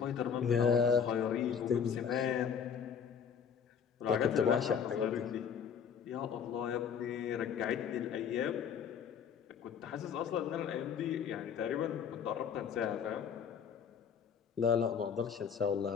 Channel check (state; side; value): quieter; right; 7.2 dB